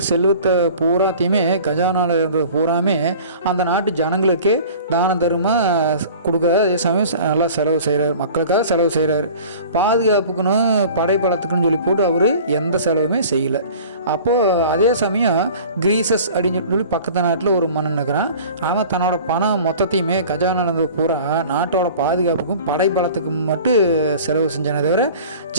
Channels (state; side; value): inverted; both; correlation -0.43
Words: செல்வத்தை பூராத்தையுமே கஜானாவில் இருந்தது பூராமே அந்த நாட்டு ஜனங்களுக்கே தான தர்மமாக கொடுக்குறாரு. அதே சமயம் நல்லா செலவு செய்கிறார், மக்களுக்காக செலவு செய்கிறாரு. பாதுகாப்புக்குன்னு படைப்பலத்துக்குன்னு சொல்லி போட்டு அவர் எந்த செலவுமே செய்யலை. அப்போது அதே சமயம் கிரீசஸ் அப்படின்னு சொல்லி பக்கத்து நாட்டில் ஒரு மன்னன் இருக்கிறான். அவன் தன்னோட பணம் மொத்தத்தையுமே கஜானாவில் இருந்தது பூரா நாட்டோட பாதுகாப்புக்கும் படைப்பலத்துக்கும் மட்டும் செலவு செஞ்சானே தவிர